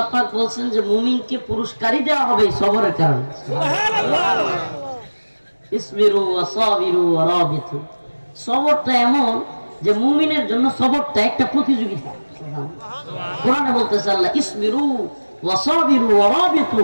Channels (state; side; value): inverted; both; correlation -1.00